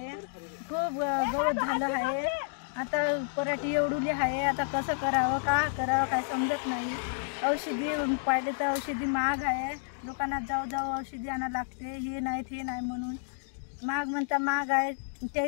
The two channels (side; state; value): right; silent; digital silence